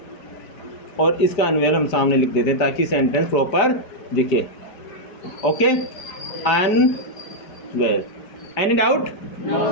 और इसका अनवेल हम सामने लिख देते हैं ताकि सेंटेंस प्रॉपर दिखे। Okay, unwell. Any doubt?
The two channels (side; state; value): right; late; 5.0 ms